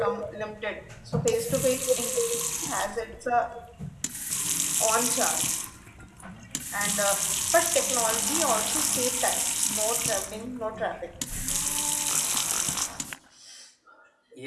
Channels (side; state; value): both; identical; correlation 1.00